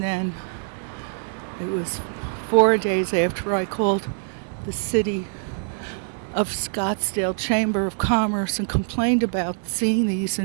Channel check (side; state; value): left; silent; 62 dB below the other